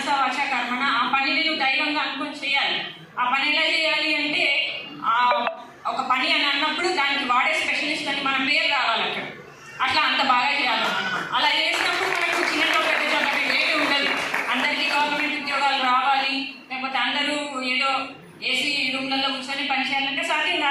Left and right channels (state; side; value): identical; both; correlation 1.00